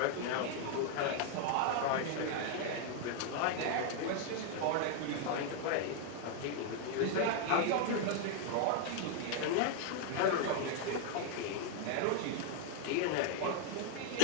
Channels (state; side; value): different; both; correlation 0.00